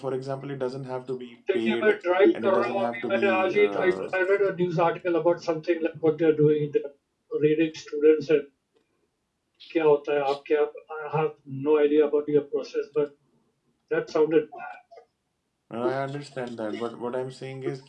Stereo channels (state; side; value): identical; both; correlation 1.00